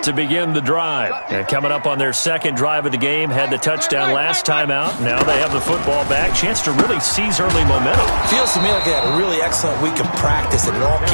to begin the drive. And coming up on their second drive of the game, had the touchdown last time out. Now they have the football back. Chance to really seize early momentum. Feels to me like they had a really excellent week of practice and it all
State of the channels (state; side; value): inverted; both; correlation -1.00